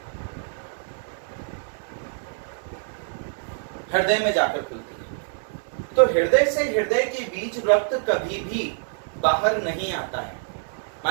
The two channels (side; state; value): left; silent; 61 dB below the other